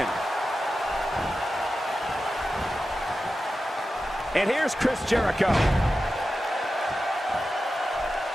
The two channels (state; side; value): normal; both; correlation 0.92